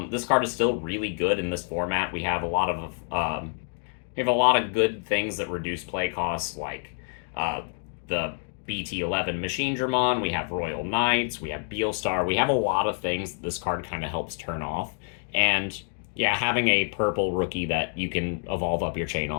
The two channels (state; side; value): silent; right; 60 dB below the other